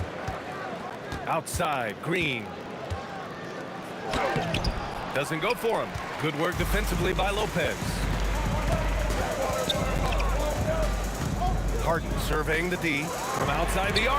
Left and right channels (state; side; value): identical; both; correlation 1.00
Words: Outside, Green. Doesn't go for him. Good work defensively by Lopez. Harden surveying the D from outside the